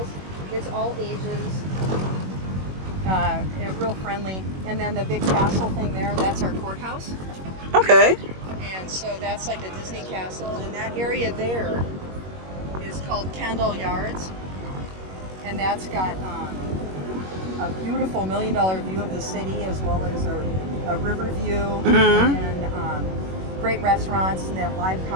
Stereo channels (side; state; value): left; late; 21 ms